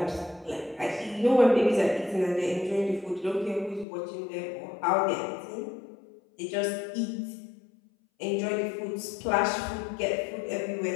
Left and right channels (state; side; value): drops out; right; at 3.9 s